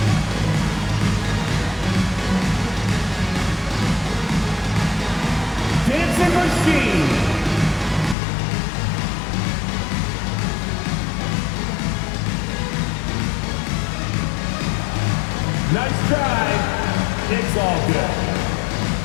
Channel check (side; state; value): right; drops out; at 8.2 s